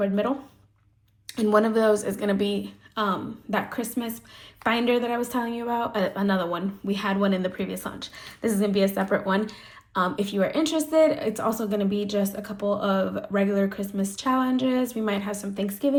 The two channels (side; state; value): both; identical; correlation 1.00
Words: middle. And one of those is going to be that Christmas binder that I was telling you about. Another one. We had one in the previous launch. This is going to be a separate one. If you are interested, it's also going to be just a couple of regular Christmas challenges. We might have some